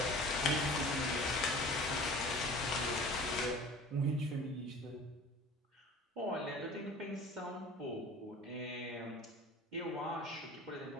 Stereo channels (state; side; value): normal; both; correlation 0.43